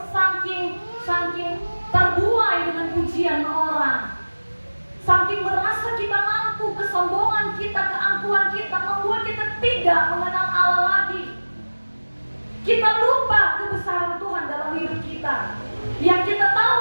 saking terbuai dengan pujian orang, saking merasa kita mampu, kesombongan kita, keangkuhan kita membuat kita tidak mengenal Allah lagi. Kita lupa kebesaran Tuhan dalam hidup kita. Yang kita tahu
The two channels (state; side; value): inverted; both; correlation -1.00